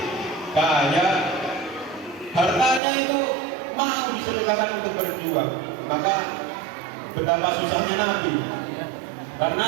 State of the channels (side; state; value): left; drops out; at 2.8 s